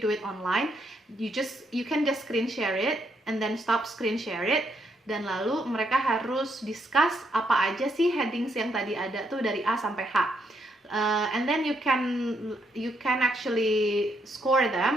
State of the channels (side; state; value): both; normal; correlation 0.75